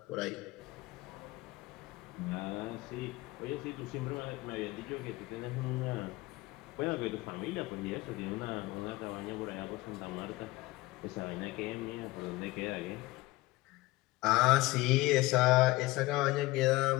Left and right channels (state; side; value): quieter; right; 20.1 dB